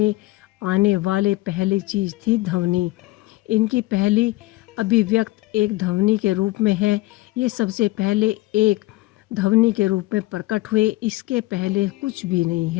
आने वाले पहली चीज़ थी ध्वनि। इनकी पहली अभिव्यक्त एक ध्वनि के रूप में है। ये सबसे पहले एक ध्वनि के रूप में प्रकट हुए, इसके पहले कुछ भी नहीं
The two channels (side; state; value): right; quieter; 19.1 dB